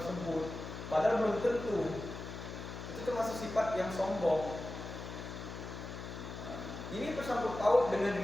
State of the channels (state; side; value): noise; left; hum, 9 dB below the sound